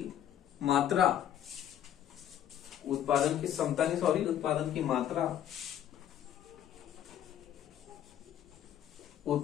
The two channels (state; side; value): quieter; right; 10.8 dB